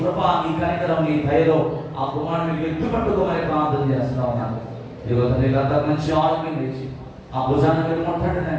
నీ కనికరం, నీ దయలో ఆ కుమారుడిని ఎత్తుపట్టుకోమని ప్రార్థన చేస్తా ఉన్నాను. ఇదిగో తండ్రి, గత మంచి ఆరోగ్యం తెచ్చి ఆ భుజాన్ని మీరు ముట్టండి.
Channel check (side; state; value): both; identical; correlation 1.00